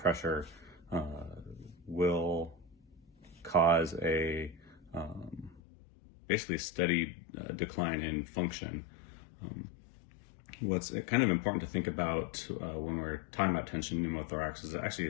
will cause a basically steady decline in function. What's kind of important to think about when we're talking about tension pneumothorax is it actually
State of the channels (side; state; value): right; drops out; at 5.6 s